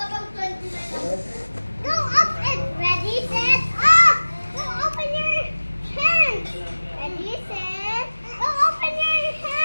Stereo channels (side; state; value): both; inverted; correlation -1.00